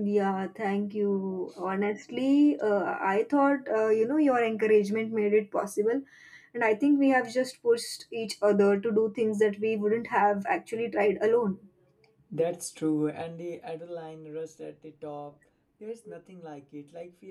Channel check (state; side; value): identical; both; correlation 1.00